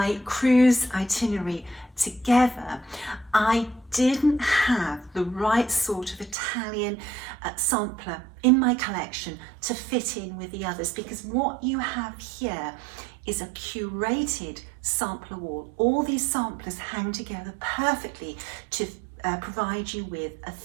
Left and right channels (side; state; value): left; drops out; at 6.4 s